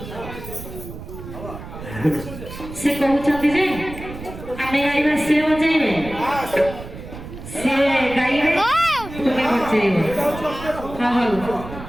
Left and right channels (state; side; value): noise; right; rumble, 12 dB below the sound